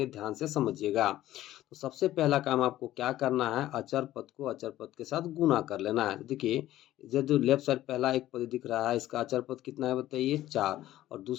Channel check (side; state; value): right; quieter; 14.2 dB